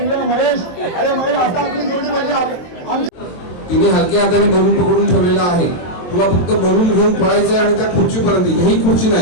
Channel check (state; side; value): late; right; 23 ms